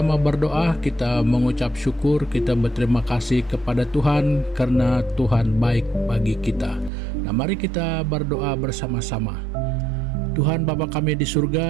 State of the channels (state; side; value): drops out; left; at 6.9 s